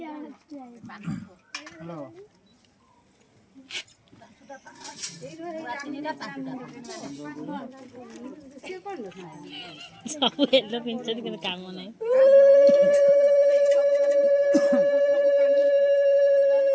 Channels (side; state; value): both; identical; correlation 1.00